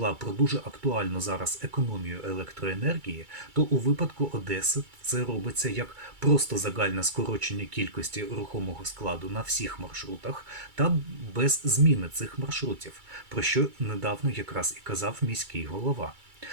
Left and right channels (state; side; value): late; left; 2.3 ms